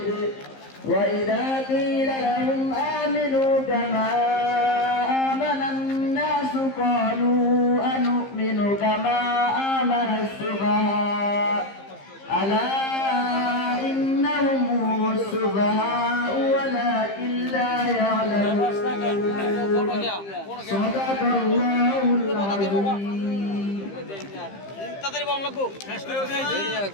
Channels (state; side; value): late; right; 15 ms